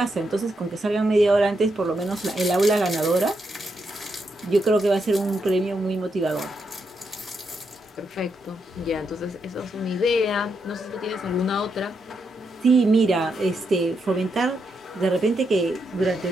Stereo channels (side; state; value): both; normal; correlation 0.82